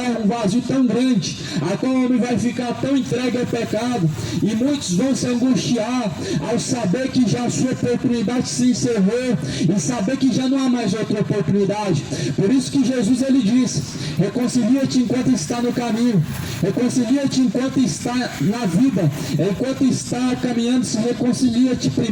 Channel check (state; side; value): identical; both; correlation 1.00